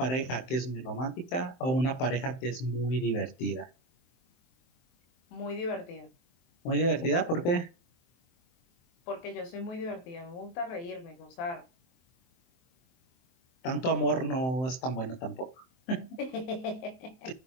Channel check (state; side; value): late; right; 23 ms